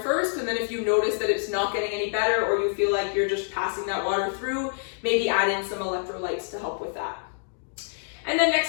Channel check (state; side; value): silent; right; digital silence